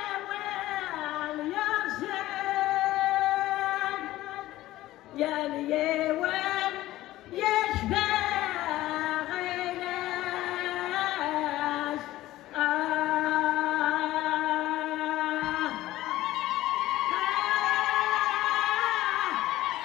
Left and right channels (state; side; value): quieter; right; 15.9 dB